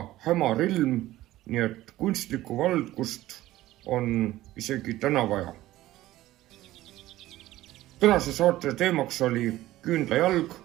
hämar ilm, nii et kunstlikku valgust on isegi täna vaja. Tänase saate teemaks oli küünlajalg.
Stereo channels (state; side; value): quieter; left; 15.8 dB